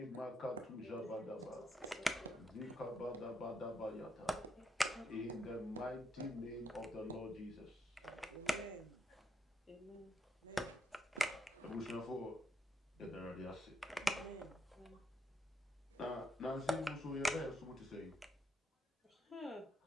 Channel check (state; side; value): normal; both; correlation 0.78